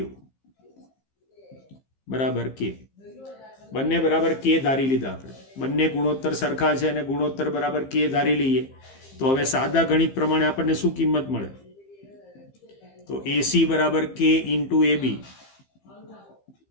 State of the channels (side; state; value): right; late; 15 ms